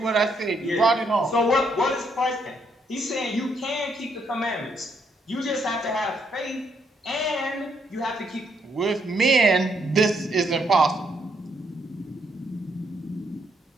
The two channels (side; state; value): both; normal; correlation 0.74